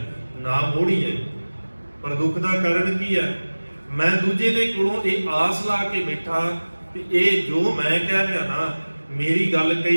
ਨਾ ਮੋੜੀਏ। ਪਰ ਦੁੱਖ ਦਾ ਕਾਰਨ ਕੀ ਹੈ? ਮੈਂ ਦੂਜੇ ਦੇ ਕੋਲੋਂ ਇਹ ਆਸ ਲਾ ਕੇ ਬੈਠਾ ਕਿ ਇਹ ਜੋ ਮੈਂ ਕਹਿ ਰਿਹਾ ਨਾ, ਮੇਰੀ ਗੱਲ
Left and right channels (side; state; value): both; inverted; correlation -1.00